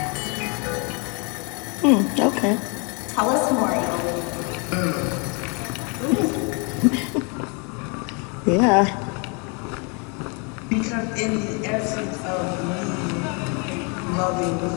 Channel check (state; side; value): quieter; right; 33.9 dB